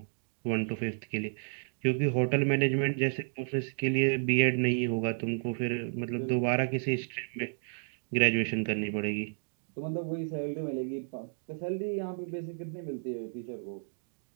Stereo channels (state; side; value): silent; left; digital silence